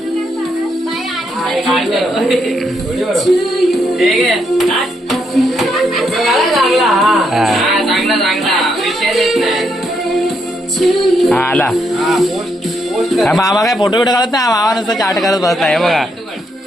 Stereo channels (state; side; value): normal; both; correlation 0.77